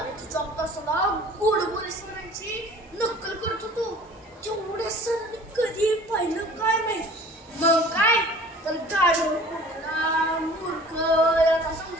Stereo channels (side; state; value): both; normal; correlation 0.47